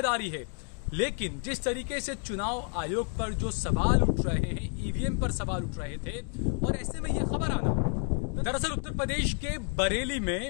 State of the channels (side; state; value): right; quieter; 39.3 dB